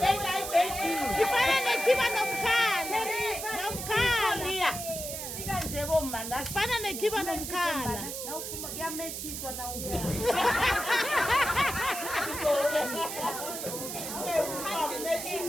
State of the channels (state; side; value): noise; right; hiss, 6 dB below the sound